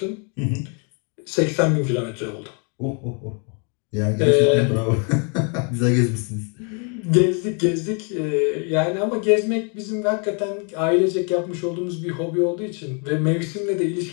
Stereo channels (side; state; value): right; quieter; 38.0 dB